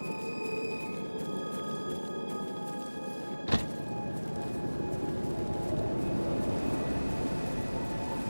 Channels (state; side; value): inverted; both; correlation -1.00